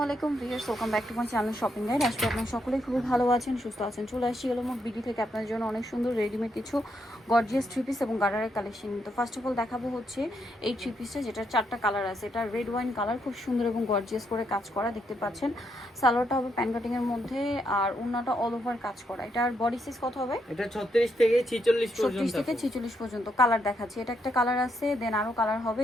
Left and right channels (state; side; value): normal; both; correlation 0.78